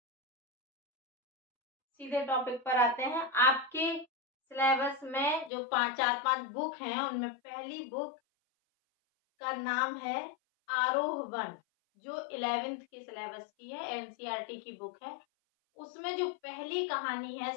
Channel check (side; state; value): right; drops out; at 5.5 s